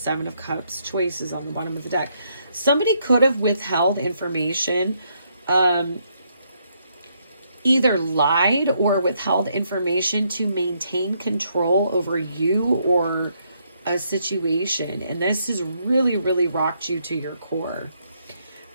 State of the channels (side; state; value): both; inverted; correlation -0.74